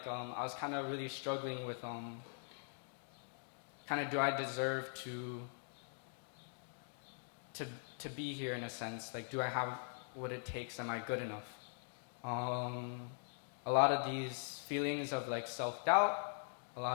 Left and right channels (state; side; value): silent; right; digital silence